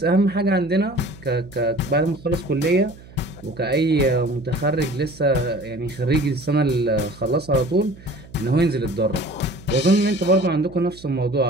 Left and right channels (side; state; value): right; noise; hum, 20 dB below the sound